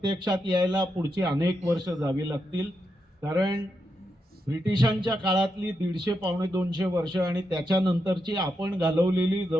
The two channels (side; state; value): both; normal; correlation 0.84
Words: यायला पुढची अनेक वर्ष जावी लागतील, कारण ब्रिटिशांच्या काळातली 150 पावणे 200 वर्ष आणि त्याच्यानंतरची आपण घालवलेली